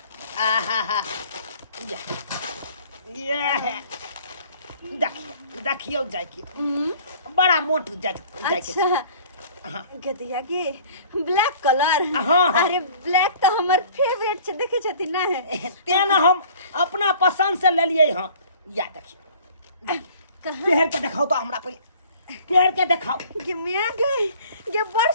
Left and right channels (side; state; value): both; inverted; correlation -0.50